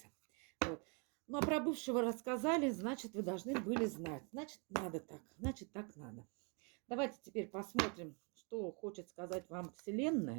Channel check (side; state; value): left; quieter; 35.1 dB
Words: вот. Ну, а про бывшего рассказали, значит, вы должны были знать, значит, надо так, значит, так надо. Давайте теперь посмотрим, что хочет сказать вам